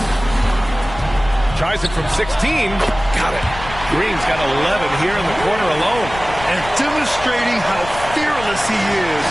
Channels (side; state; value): left; noise; rumble, 13 dB below the sound